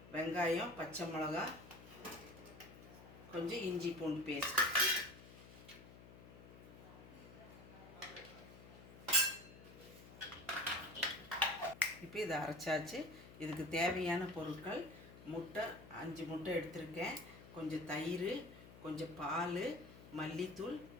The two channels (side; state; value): left; noise; hum, 17 dB below the sound